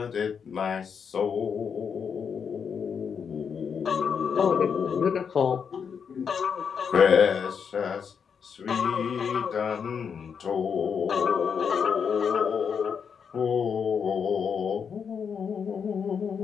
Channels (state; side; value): quieter; right; 6.7 dB